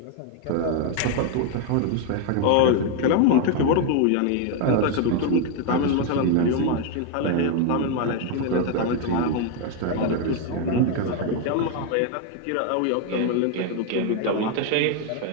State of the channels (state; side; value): different; both; correlation 0.01